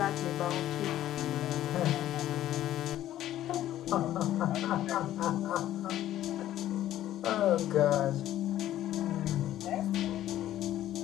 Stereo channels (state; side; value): quieter; right; 13.0 dB